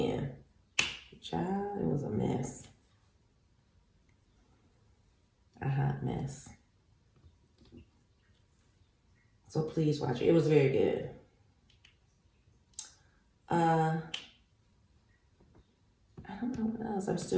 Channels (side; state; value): both; identical; correlation 1.00